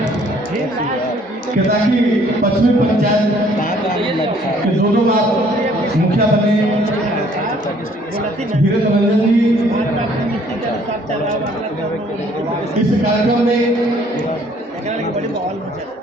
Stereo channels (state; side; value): normal; both; correlation 0.60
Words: केताकी पश्चिमी पंचायत के 2 बार मुखिया बने वीरेंद्र रंजन जी। इस कार्यक्रम में